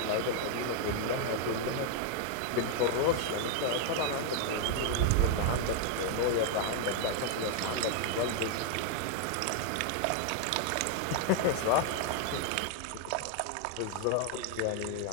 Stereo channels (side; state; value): both; different; correlation 0.00